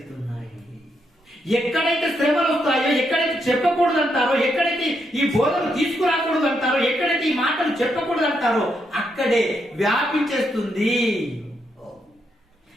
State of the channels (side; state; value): both; normal; correlation 0.79